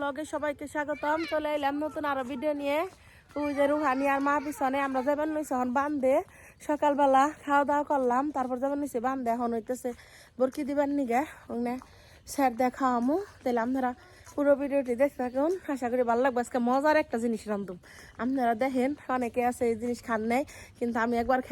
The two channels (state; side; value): identical; both; correlation 1.00